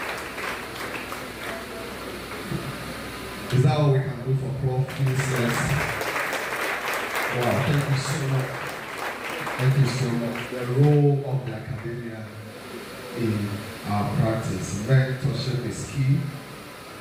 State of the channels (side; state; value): both; identical; correlation 1.00